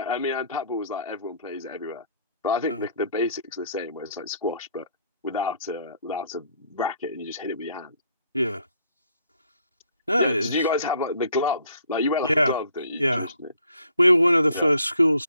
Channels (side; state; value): both; inverted; correlation -0.63